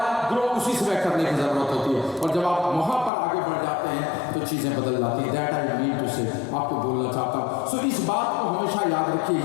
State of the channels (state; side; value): drops out; right; at 3.1 s